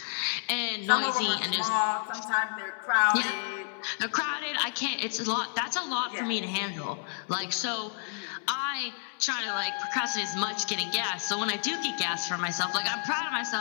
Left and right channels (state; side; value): silent; right; 58 dB below the other